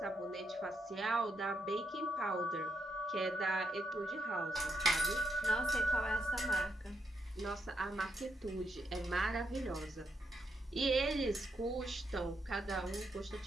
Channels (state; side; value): normal; both; correlation 0.80